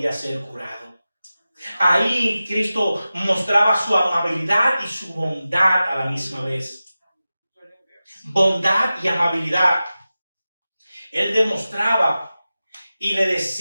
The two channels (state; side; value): inverted; both; correlation -0.95